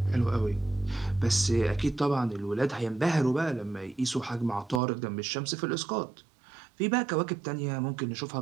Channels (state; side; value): drops out; left; at 4.8 s